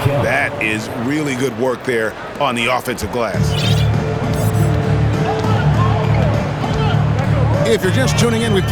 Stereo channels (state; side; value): identical; both; correlation 1.00